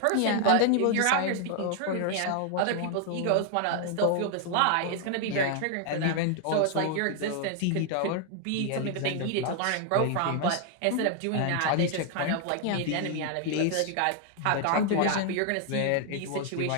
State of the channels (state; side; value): different; both; correlation 0.00